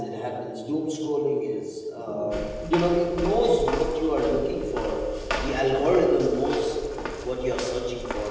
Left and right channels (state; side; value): identical; both; correlation 1.00